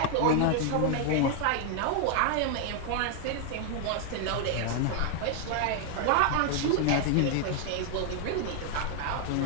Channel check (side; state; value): both; different; correlation 0.00